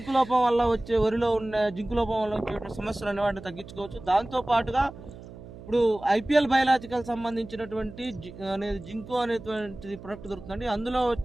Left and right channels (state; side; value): noise; right; hum, 16 dB below the sound